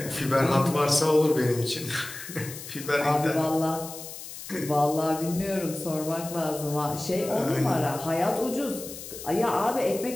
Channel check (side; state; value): left; noise; hiss, 12 dB below the sound